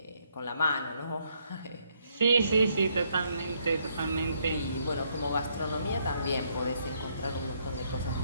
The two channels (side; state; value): both; inverted; correlation -0.72